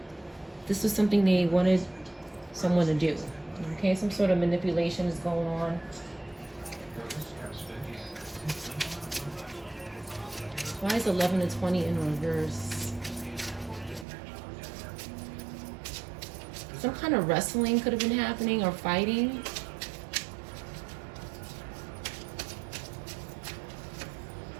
This was something they wanted someone to do. Okay, some sort of manipulation is going on. Why is 11 to 20 in reverse? Some kind of wrestling could have been happening, or fighting.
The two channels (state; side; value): drops out; left; at 14.1 s